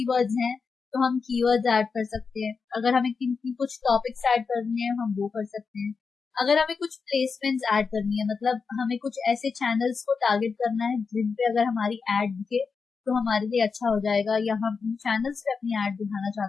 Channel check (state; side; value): quieter; right; 5.1 dB